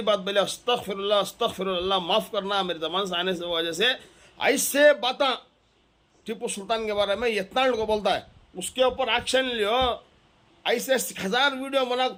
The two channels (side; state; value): both; identical; correlation 1.00